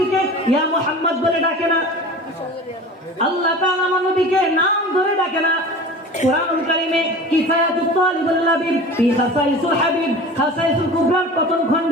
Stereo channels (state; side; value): normal; both; correlation 0.37